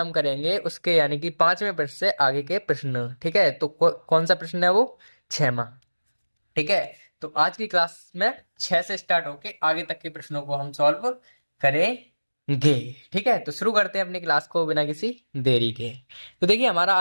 करेंगे उसके यानी कि 5वें प्रश्न से आगे के प्रश्न। ठीक है, तो कौन सा प्रश्न है वो? 6वां। ठीक है, तो आज की क्लास में 6 से स्टार्ट होके आगे तक के प्रश्नों को हम सॉल्व करेंगे। ठीक है, तो शुरू करते हैं अपनी क्लास को बिना किसी देरी के। तो देखिए, हमारा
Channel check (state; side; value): inverted; both; correlation -1.00